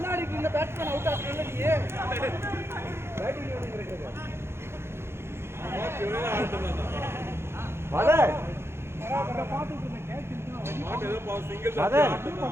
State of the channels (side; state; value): left; late; 0.12 ms